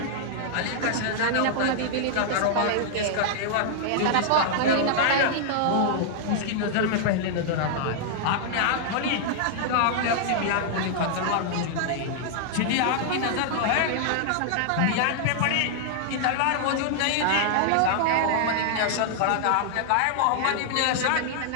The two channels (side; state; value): both; different; correlation -0.01